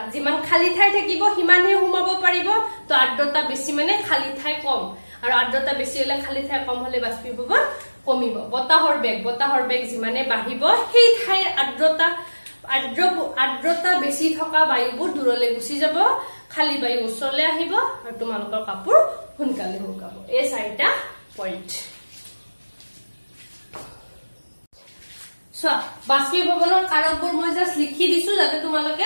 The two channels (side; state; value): both; inverted; correlation -1.00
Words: যিমান খালি ঠাই থাকিব সিমানে সোমাব পাৰিব তো আৰ্দ্ৰতা বেছি মানে খালি ঠাই কম আৰু আৰ্দ্ৰতা বেছি হলে খালি ঠাই কম হলে বাষ্পীভৱন কমিব বতাহৰ বেগ যিমানে বাঢ়িব সেই ঠাইৰ আৰ্দ্ৰতা বেছি থকা বায়ুবোৰ দূৰলৈ গুচি যাব খালি বায়ু ওচৰলৈ আহিব আৰু তোমালোকৰ কাপোৰ সোনকালে শুকাব এই 4টা পইণ্ট বাষ্পীভৱনৰ কাৰকবোৰ মই জাস্ট লিখি দিছো যাতে